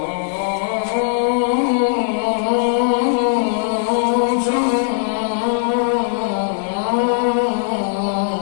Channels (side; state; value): right; silent; digital silence